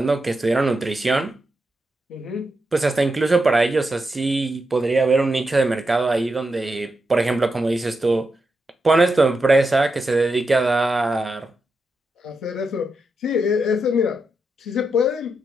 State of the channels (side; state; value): both; normal; correlation 0.86